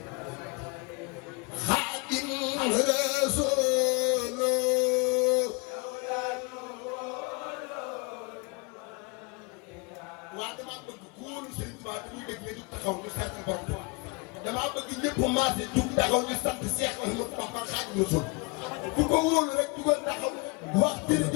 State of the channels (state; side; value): quieter; right; 29.6 dB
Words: خادم رسول waa damaa bëgg ku wóolu Serigne Touba te muy dégg nga jug taxaw ñu sant borom Touba damaa bëgg ñëpp maase jug taxaw ñu sant Cheikh Ahmadou Bamba Khadimu Rasul ku ko wóolu rek jugal taxaw wax